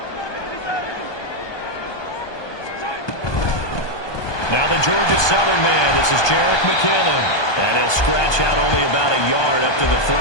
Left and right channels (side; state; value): right; late; 1.2 ms